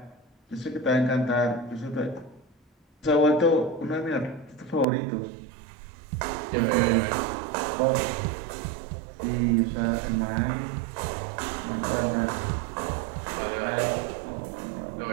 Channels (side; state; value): left; drops out; at 4.9 s